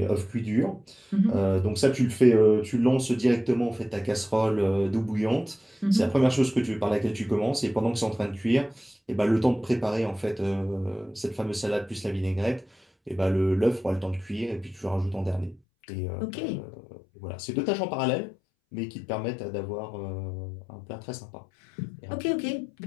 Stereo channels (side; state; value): right; drops out; at 15.6 s